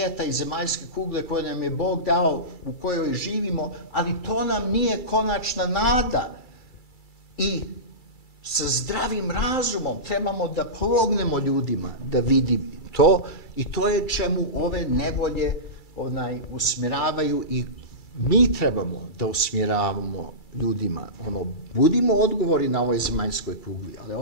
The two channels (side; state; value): right; late; 2.3 ms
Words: i zemaljske kugle koje nam je Bog dao, u kojoj živimo, ali to nam nije konačna nada. I sa zdravim razumom trebamo da pomognemo ljudima da vidi to, i to je čemu ove nevolje usmjeravaju, i mi trebamo da usmjeravamo ljudima. Budimo odgovori na ovoj zemaljskoj kugli, ali